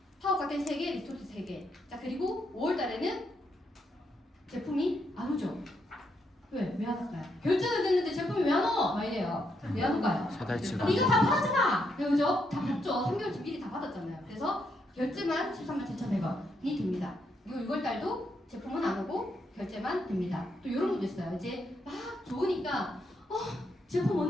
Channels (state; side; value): normal; both; correlation 0.78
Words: 파워 칵테일 3개, 리스토트 3개. 자, 그리고 5월달에는 제품이 안 오죠. 왜 안 올까요? 결제는 됐는데 제품이 왜 안 와? 막 이래요. 왜 안 올까요? 사달치가 이거 다 받았잖아. 그죠? 다 받죠. 3개월치 미리 다 받았잖아요. 그래서 결제만 137,100원이 됩니다. 그리고 6월달도 제품은 안 오고 결제만 됩니다. 또 이런 것도 있어요. 이제 막 좋으니까 제품